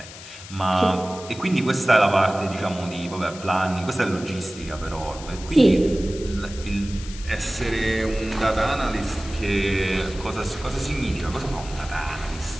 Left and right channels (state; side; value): noise; left; hiss, 15 dB below the sound